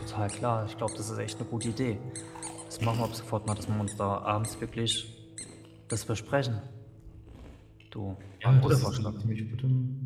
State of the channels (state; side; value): identical; both; correlation 1.00